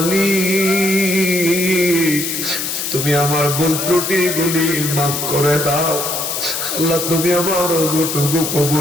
তুমি আমার ভুল ত্রুটি গুলি মাফ করে দাও আল্লাহ, তুমি আমার ওযুটুকু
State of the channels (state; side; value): noise; left; hiss, 3 dB below the sound